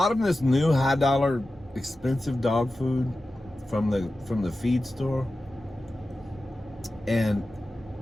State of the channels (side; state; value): both; normal; correlation 0.94